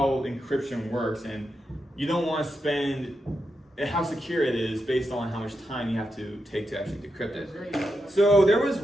encryption works, and you don't want to spend how secure it is based on how much time you have to take to actually decrypt it. So there was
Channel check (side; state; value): both; normal; correlation 0.86